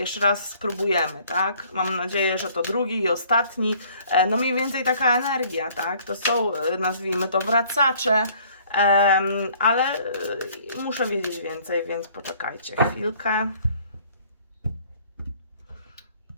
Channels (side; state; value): both; inverted; correlation -0.58